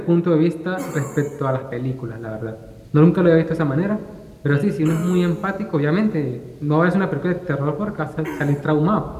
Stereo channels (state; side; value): identical; both; correlation 1.00